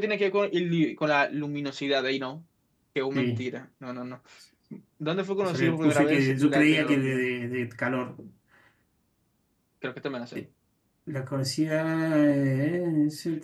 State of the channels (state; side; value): identical; both; correlation 1.00